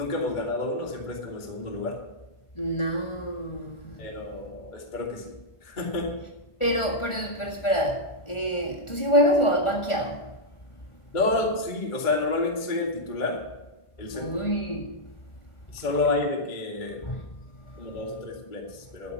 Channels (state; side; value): late; right; 1.4 ms